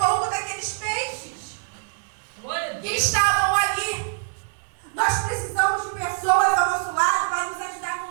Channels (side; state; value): left; silent; digital silence